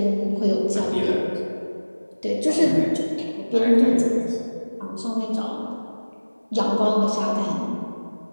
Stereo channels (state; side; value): inverted; both; correlation -1.00